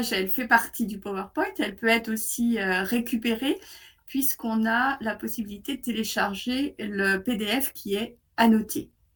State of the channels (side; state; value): both; identical; correlation 1.00